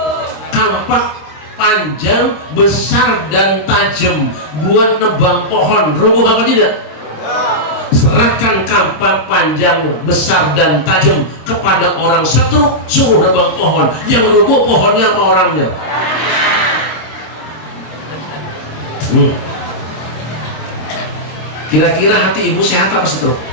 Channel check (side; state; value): right; late; 26 ms